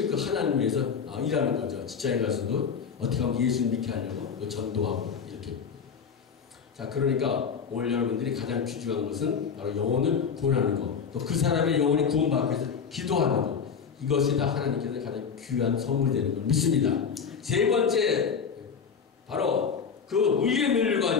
그 하나님 위해서 일하는 거죠. 직장에 가서도 어떻게 하면 예수 믿게 하려고 전도하고 이렇게. 자, 그러니까 오늘 여러분들이 가장 귀중한 것은 바로 영혼을 구원하는 것, 또 그 사람의 영혼이 구원받기 위해서 기도하는 것, 이것이 다 하나님께서 가장 귀한 선물이 되는 걸 믿습니다. 세 번째, 바로 그 의의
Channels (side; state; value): right; quieter; 6.4 dB